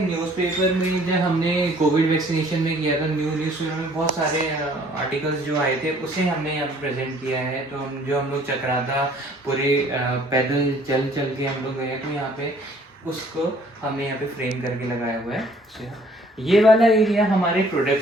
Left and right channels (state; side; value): normal; both; correlation 0.58